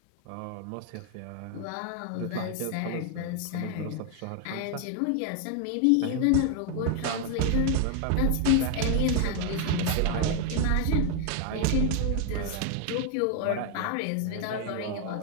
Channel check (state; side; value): different; both; correlation 0.00